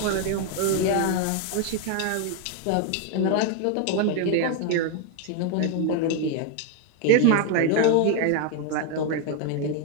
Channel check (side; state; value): both; different; correlation 0.01